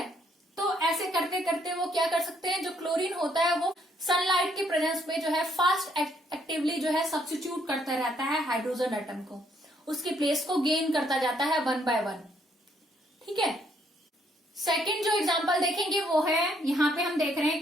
तो ऐसे करते करते वो क्या कर सकते हैं, जो क्लोरीन होता है वो सनलाइट के प्रेजेंस में जो है फास्ट एक्टिवली जो है सब्स्टिट्यूट करता रहता है हाइड्रोजन एटम को, उसकी प्लेस को गेन करता जाता है 1 by 1। ठीक है, सेकंड जो एग्जांपल देखेंगे वो है, यहाँ पे हम देख रहे हैं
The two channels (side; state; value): both; normal; correlation 0.70